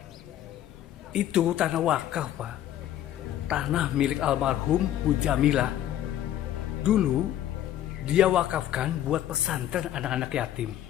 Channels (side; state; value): right; quieter; 11.9 dB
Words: Itu tanah wakaf Pak. Tanah milik almarhum Bu Jamilah. Dulu dia wakafkan buat pesantren anak-anak yatim.